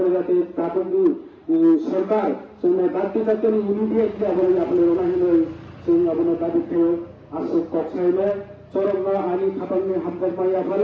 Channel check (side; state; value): both; identical; correlation 1.00